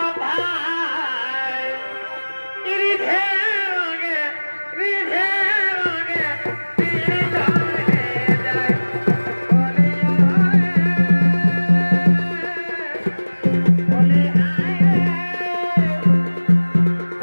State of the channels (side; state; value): both; inverted; correlation -1.00